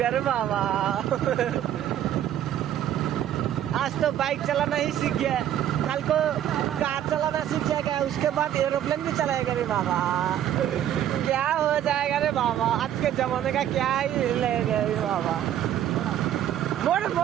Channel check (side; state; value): left; quieter; 11.1 dB